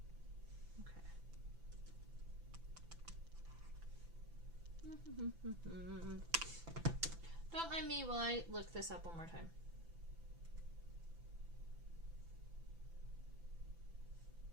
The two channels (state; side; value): late; left; 6.0 ms